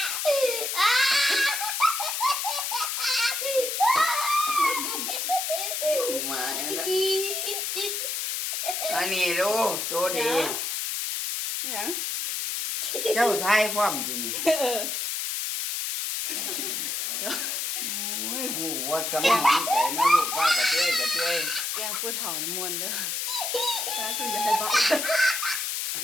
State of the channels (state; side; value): noise; left; hiss, 2 dB below the sound